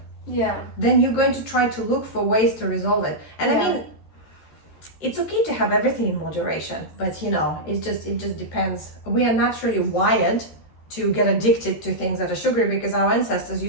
then you're going to try to look for ways to resolve it. And I mean, it's okay to have everything in moderation, but it just depends. We are naturally wired to get addicted to things that are sugary, because our ancestors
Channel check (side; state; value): right; late; 13 ms